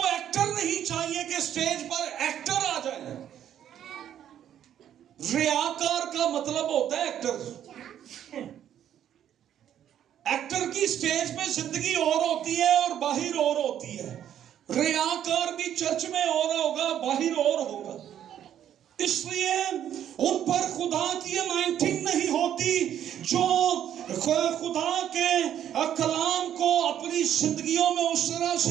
ایکٹر نہیں چاہیے کہ سٹیج پر ایکٹر آ جائے۔ ریاکار کا مطلب ہوتا ہے ایکٹر۔ ایکٹر کی سٹیج پہ زندگی اور ہوتی ہے اور باہر اور ہوتی ہے۔ ریاکار بھی چرچ میں اور ہوگا، باہر اور ہوگا۔ اس لیے ان پر خدا کی انائنٹنگ نہیں ہوتی۔ جو خدا کے کلام کو اپنی زندگیوں میں اس طرح سے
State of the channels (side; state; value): left; quieter; 10.3 dB